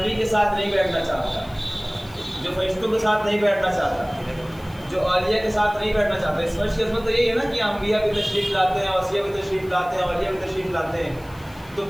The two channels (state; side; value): noise; left; hiss, 25 dB below the sound